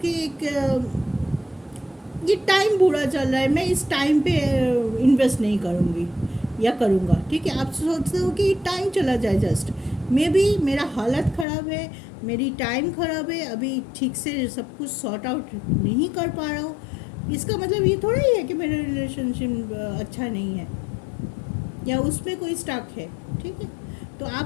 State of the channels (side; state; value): right; drops out; at 11.5 s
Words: कि एक ये टाइम बुरा चल रहा है, मैं इस टाइम पे इन्वेस्ट नहीं करूँगी या करूँगा, ठीक है। आप सोचते हो कि टाइम चला जाए, जस्ट मे बी मेरा हालत ख़राब है, मेरी टाइम ख़राब है, अभी ठीक से सब कुछ सॉर्ट आउट नहीं कर पा रहा हूँ, इसका मतलब ये थोड़ा ही है कि मेरा रिलेशनशिप अच्छा नहीं है या उसमें कोई स्टक है, ठीक है। तो